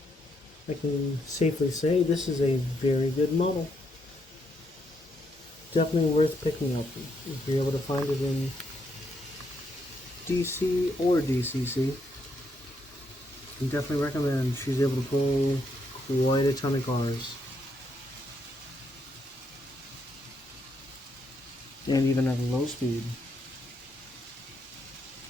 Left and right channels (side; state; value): both; normal; correlation 0.76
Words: I can safely say this is a very good model. Definitely worth picking up if you're able to find it in DC or DCC. I definitely recommend. She's able to pull quite a ton of cars. And even at a low speed.